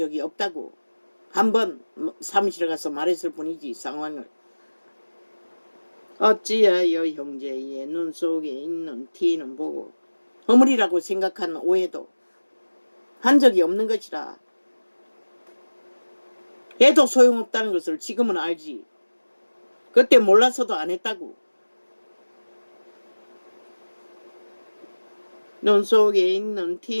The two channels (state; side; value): inverted; both; correlation -1.00